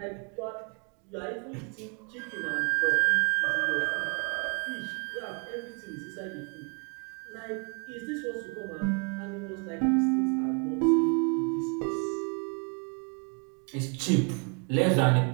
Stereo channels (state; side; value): quieter; left; 37.4 dB